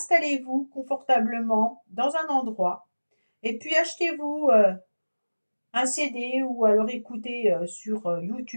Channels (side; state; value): both; inverted; correlation -1.00